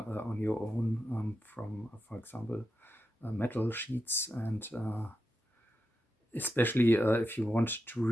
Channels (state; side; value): normal; both; correlation 0.88